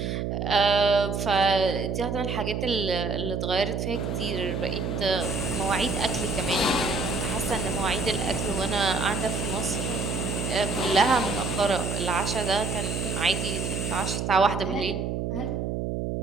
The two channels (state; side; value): noise; right; hum, 2 dB below the sound